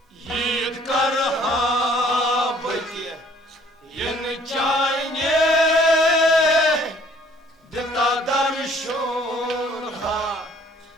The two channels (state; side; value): normal; both; correlation 0.58